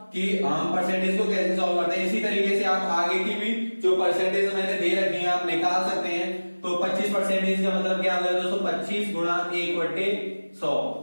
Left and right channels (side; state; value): both; inverted; correlation -1.00